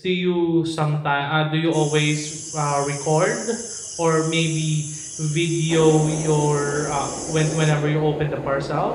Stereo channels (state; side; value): identical; both; correlation 1.00